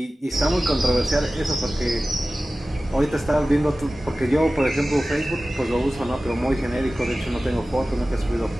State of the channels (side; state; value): both; normal; correlation 0.96